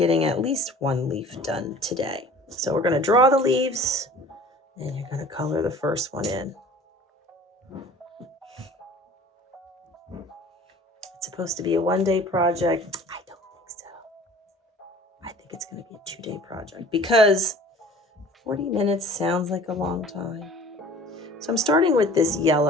at least one leaf done today. So we're going to draw the leaves and you're going to color the first one in. It's supposed to be a one-day project. I don't think so. I think it's going to be a two-day project because 40 minutes sounds like a long time. So I'm starting with this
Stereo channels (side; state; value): both; normal; correlation 0.46